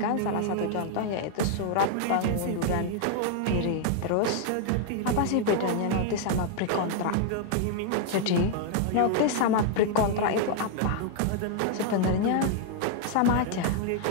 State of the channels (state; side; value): different; both; correlation 0.00